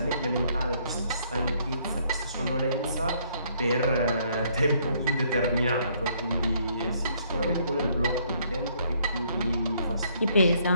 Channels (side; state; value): both; inverted; correlation -0.67